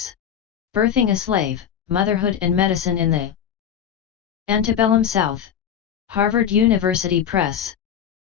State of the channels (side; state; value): right; quieter; 8.8 dB